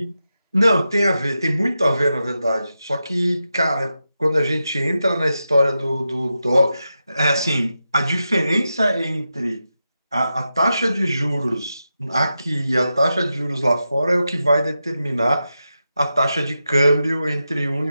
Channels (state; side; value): inverted; both; correlation -0.89